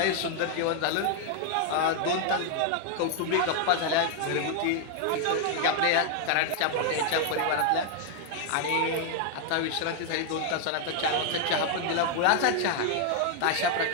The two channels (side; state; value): both; different; correlation 0.00